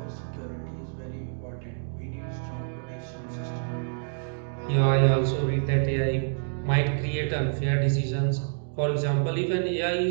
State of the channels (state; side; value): silent; left; digital silence